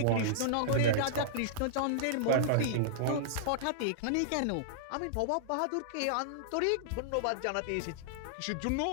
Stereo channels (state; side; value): different; both; correlation -0.01